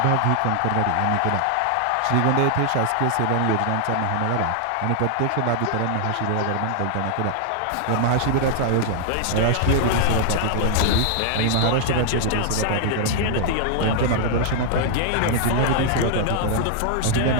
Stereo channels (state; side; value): different; both; correlation -0.01